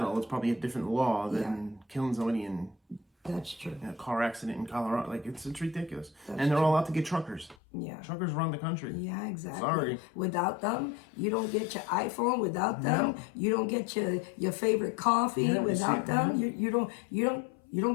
it's probably a different law than killing somebody in That's true. a car accident in Colorado. Like, it's ridiculous. That's and they're all out to get truckers. Yeah. Truckers run the country. Yeah, exactly. Sorry. Without them, you don't get your iPhone. Without them, you don't get your favorite coffee. Without them, you don't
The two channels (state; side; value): drops out; right; at 7.6 s